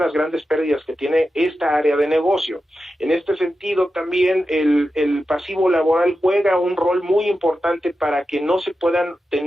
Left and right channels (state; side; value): normal; both; correlation 0.91